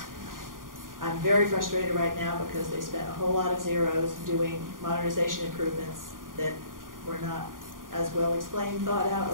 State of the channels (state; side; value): late; left; 0.90 ms